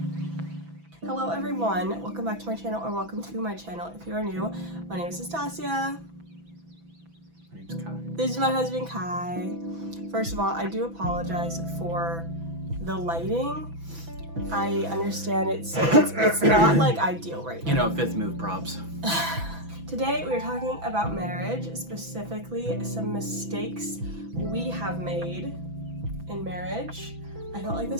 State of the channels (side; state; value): left; late; 6.0 ms